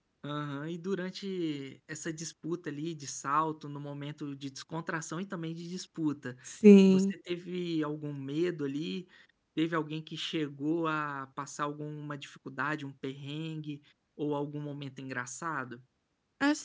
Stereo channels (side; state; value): both; identical; correlation 1.00